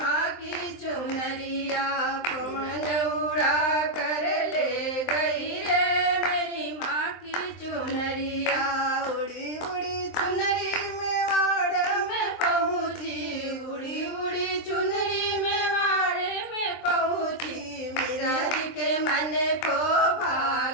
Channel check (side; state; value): right; late; 23 ms